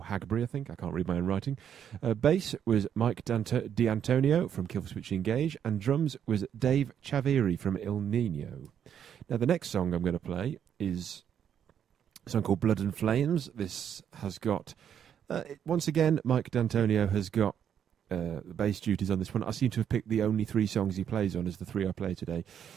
Hagbury, I think. I can't read my own writing. Bass was Mike D'Antonio from Killswitch Engage, and drums was Dave Chaviri from Il Nino. Now, the next song I'm going to play is a song called Blood and Flames. This has got... once again, Mike D'Antonio has got the bass duties on this one. I seem to have picked the only 3 songs he plays on as the 3 I play today.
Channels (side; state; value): left; quieter; 8.8 dB